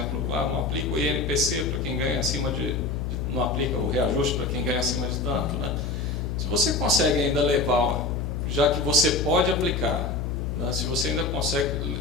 não aplica o INPC para quem ganha acima não aplica o reajuste para quem ganha acima de tanto, né? Se você consegue ainda levar, já que você pode aplicar, né, se você ainda consegue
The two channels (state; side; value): noise; left; hum, 2 dB below the sound